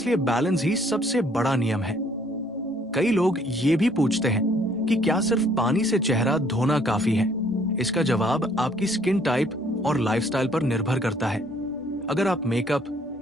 बैलेंस ही सबसे बड़ा नियम है। कई लोग ये भी पूछते हैं कि क्या सिर्फ पानी से चेहरा धोना काफी है? इसका जवाब आपकी स्किन टाइप और लाइफस्टाइल पर निर्भर करता है। अगर आप मेकअप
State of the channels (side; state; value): both; normal; correlation 0.62